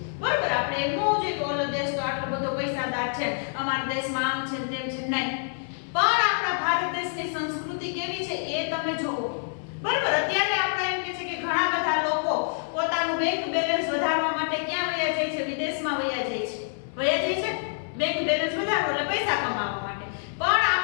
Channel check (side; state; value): right; silent; digital silence